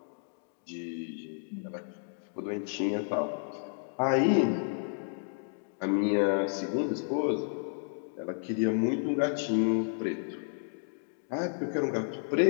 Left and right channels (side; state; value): right; silent; digital silence